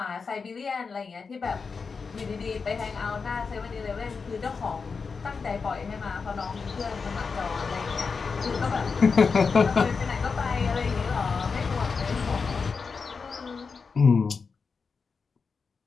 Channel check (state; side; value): quieter; right; 5.1 dB